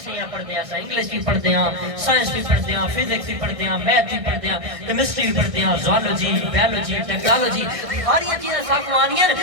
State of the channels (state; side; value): late; left; 1.6 ms